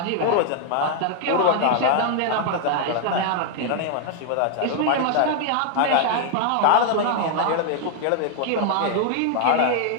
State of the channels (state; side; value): different; both; correlation 0.00